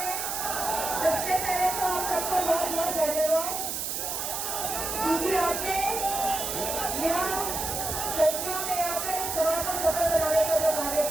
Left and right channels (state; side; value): noise; right; hiss, 3 dB below the sound